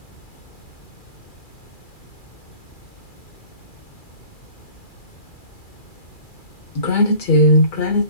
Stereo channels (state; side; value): late; right; 2.3 ms